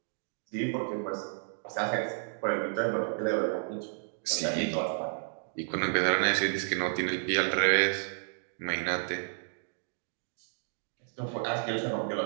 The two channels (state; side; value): silent; left; digital silence